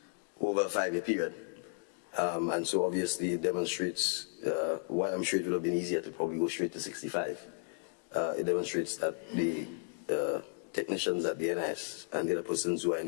over a 5-year period. And so obviously it demonstrates, while I'm sure it would have been easier to probably go straight to 65, it demonstrates that the technicians at the NIS and the other persons who are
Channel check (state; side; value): silent; right; 55 dB below the other